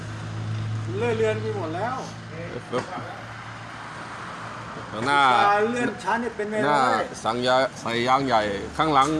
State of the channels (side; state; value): both; identical; correlation 1.00